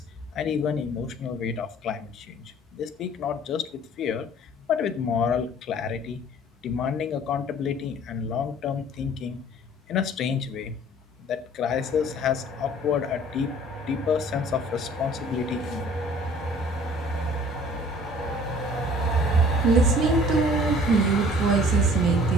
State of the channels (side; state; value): both; normal; correlation 0.51